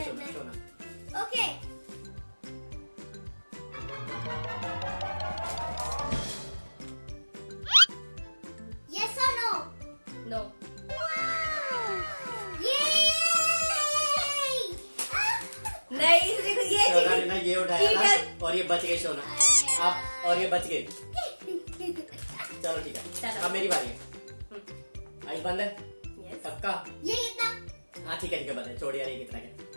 शोना, मैं। शोना। ओके ओके यस और नो नो। नहीं देखो ये शोना ने ना ये उठाया ठीक था है। और ये बच गए शोना। आप और ये बच गए। चलो ठीक है, चलो। अब मेरी बारी है। आइस बंद है यस। पक्का? ये कितना हाँ ठीक है बंद है। छोड़ यार, ये कितना क्या?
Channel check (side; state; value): both; inverted; correlation -1.00